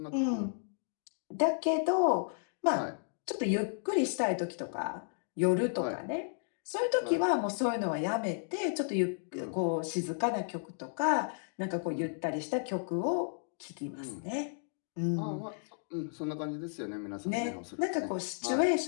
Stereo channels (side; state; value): right; silent; digital silence